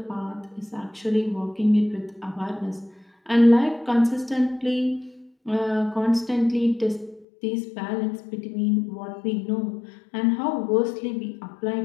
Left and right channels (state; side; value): drops out; right; at 7.2 s